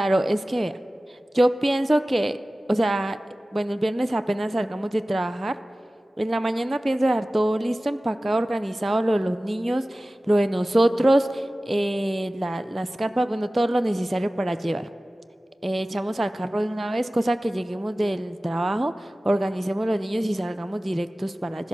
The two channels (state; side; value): normal; both; correlation 0.97